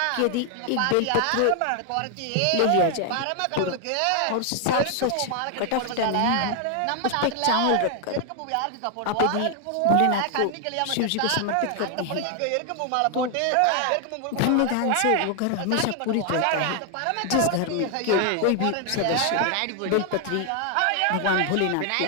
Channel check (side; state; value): both; different; correlation 0.00